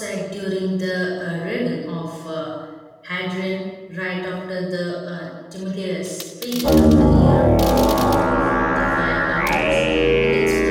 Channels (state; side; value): identical; both; correlation 1.00